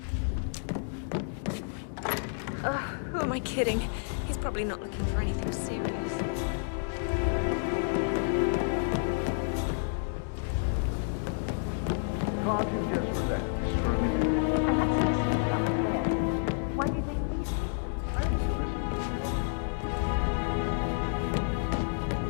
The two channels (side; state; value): right; silent; digital silence